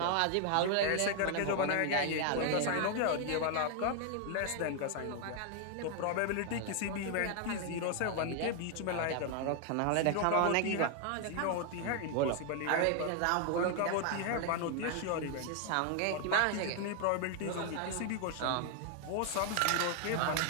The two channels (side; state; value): both; different; correlation 0.00